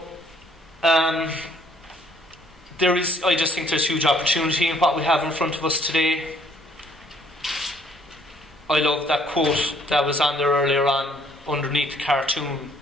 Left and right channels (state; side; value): normal; both; correlation 0.63